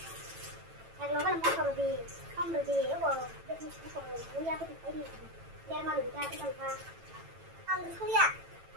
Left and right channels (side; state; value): left; late; 9.0 ms